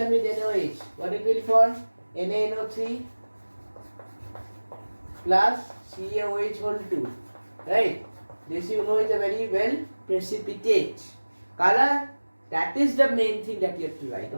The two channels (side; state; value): both; inverted; correlation -1.00